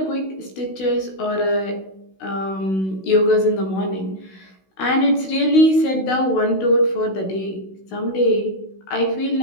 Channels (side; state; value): right; late; 16 ms